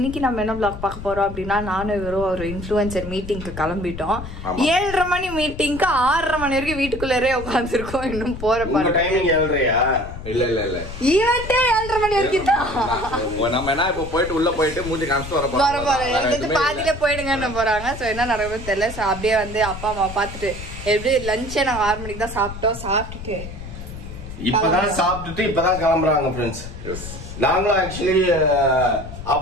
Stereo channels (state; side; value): noise; left; rumble, 10 dB below the sound